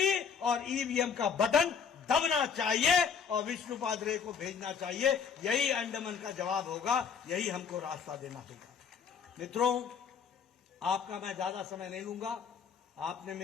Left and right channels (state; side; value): quieter; right; 6.7 dB